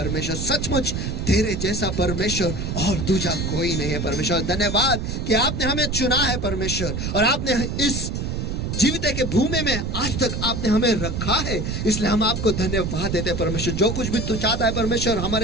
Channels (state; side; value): noise; right; rumble, 3 dB below the sound